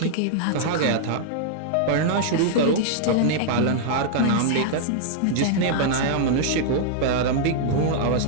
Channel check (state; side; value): different; both; correlation -0.01